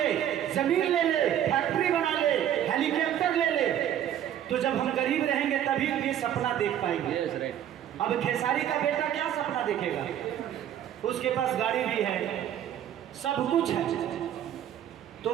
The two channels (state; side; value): quieter; left; 10.6 dB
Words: जमीन ले ले, फैक्ट्री बना ले, हेलीकॉप्टर ले ले। तो जब हम गरीब रहेंगे तभी ये सपना देख पाएंगे। अब खेसारी का बेटा क्या सपना देखेगा? उसके पास गाड़ी भी है, सब कुछ है, तो